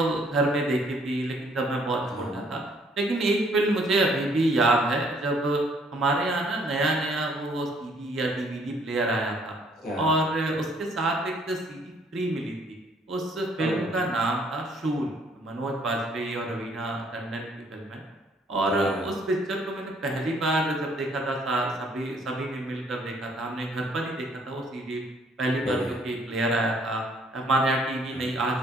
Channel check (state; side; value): normal; both; correlation 0.63